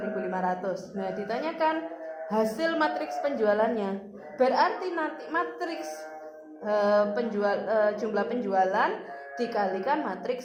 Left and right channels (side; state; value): both; identical; correlation 1.00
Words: Nah, ditanyakan hasil matriks penjualannya. Berarti nanti matriks jumlah penjualan dikalikan matriks